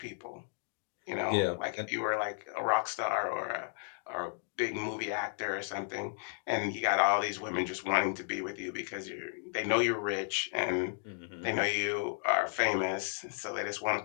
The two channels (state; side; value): silent; right; 55 dB below the other